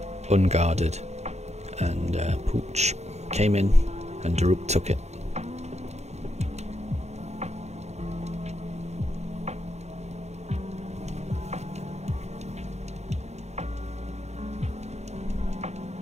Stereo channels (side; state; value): left; late; 0.32 ms